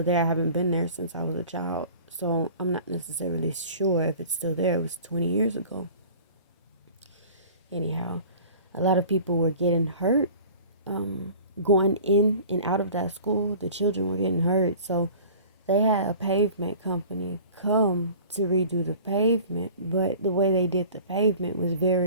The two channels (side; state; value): both; inverted; correlation -0.44